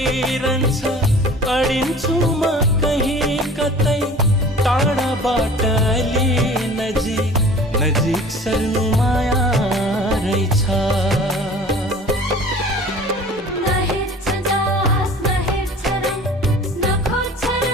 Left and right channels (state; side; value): normal; both; correlation 0.44